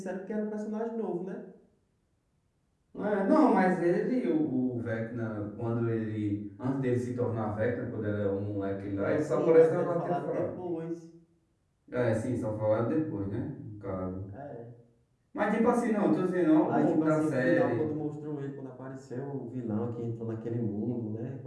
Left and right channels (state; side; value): identical; both; correlation 1.00